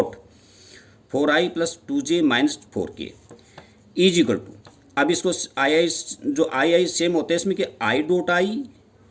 4i plus 2j minus 4k equal to. अब इसको आई सेम होते हैं इसमें कि i dot i,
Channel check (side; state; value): both; identical; correlation 1.00